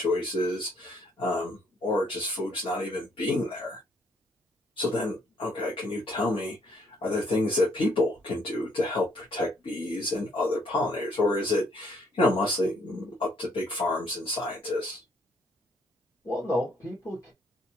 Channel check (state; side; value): normal; both; correlation 0.68